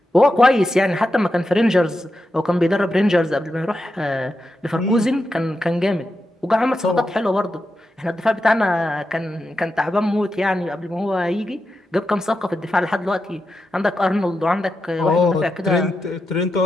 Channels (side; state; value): both; normal; correlation 0.88